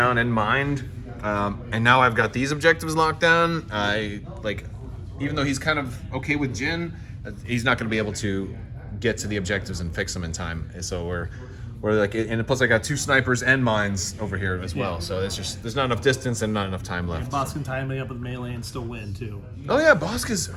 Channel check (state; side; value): identical; both; correlation 1.00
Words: in mind, and now I've got these objectives locked down. Even though he's kind of okay with Jyn, he's not going to be able to get to the objectives and fix them in time. So we're like, and plus I got 2 snipers and mines over here as well. So it's just there's not enough distance and not enough time left. Boss can tie him up with melee and still win too. Oh yeah, Boska's